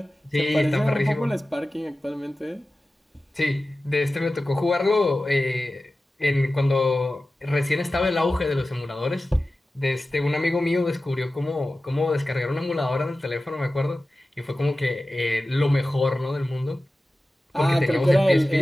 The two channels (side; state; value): both; normal; correlation 0.95